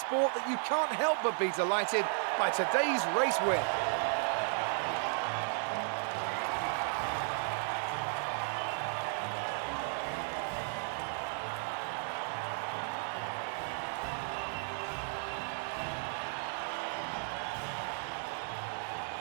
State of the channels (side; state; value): left; silent; 55 dB below the other